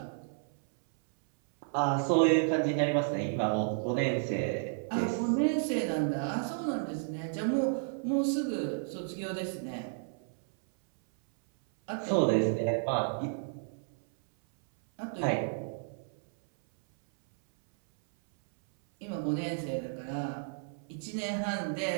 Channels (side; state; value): left; silent; 56 dB below the other